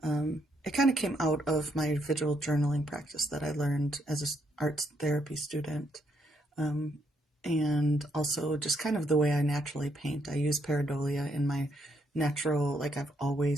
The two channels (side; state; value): both; normal; correlation 0.74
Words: kind of came out of my visual journaling practice that I learned as an arts therapy student. And also just kind of the way I naturally paint. I use pareidolia in my natural, like I've